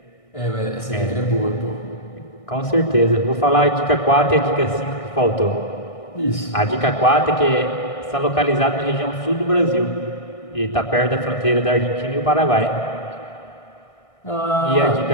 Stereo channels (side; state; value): right; late; 1.6 ms